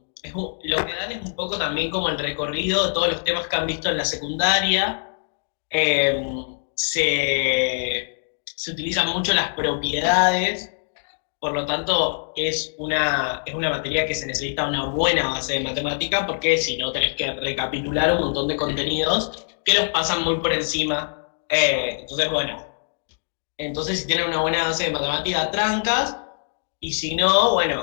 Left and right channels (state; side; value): silent; right; digital silence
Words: lo que dan es un poco también como el recorrido de todos los temas que han visto en la secundaria. Eh, se utilizan mucho las propiedades, por lo tanto es una materia que se necesita una buena base de matemática porque si no tenés que recapitular un montón de contenidos que los pasan muy por encima. Entonces, bueno, entonces si tienen una buena base de matemática, trancas, y si no,